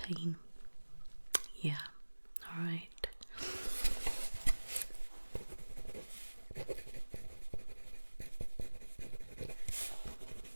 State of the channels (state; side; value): inverted; both; correlation -1.00